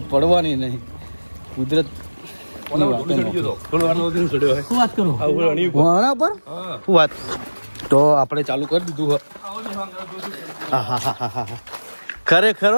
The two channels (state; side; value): inverted; both; correlation -1.00